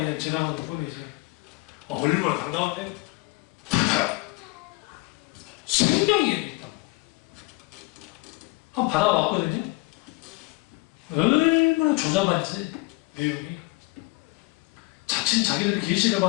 지나가는 뿐이지. 얼마나 당당한데? 생명이 있다고. 한번 받아왔거든요. 얼마나 조잡한지 내용이. 자칫 자기들이 계시를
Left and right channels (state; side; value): quieter; right; 24.0 dB